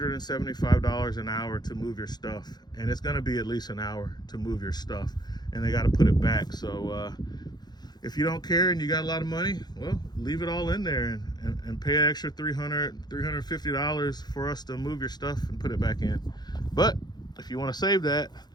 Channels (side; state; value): right; late; 0.20 ms